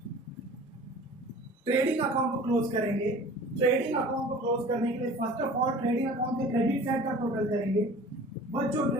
ट्रेडिंग अकाउंट को क्लोज करेंगे। ट्रेडिंग अकाउंट को क्लोज करने के लिए first of all trading account के क्रेडिट साइड का टोटल करेंगे बच्चों।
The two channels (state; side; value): normal; both; correlation 0.43